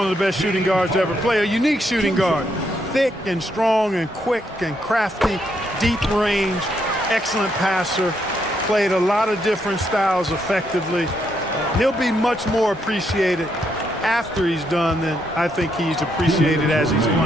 of the best shooting guards to ever play. A unique shooting guard. Thick and strong and quick and crafty, deep range, excellent passer. Played a lot of different styles effectively. He'll be much more appreciated after he's done than I think he's appreciated as he's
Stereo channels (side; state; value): both; normal; correlation 0.76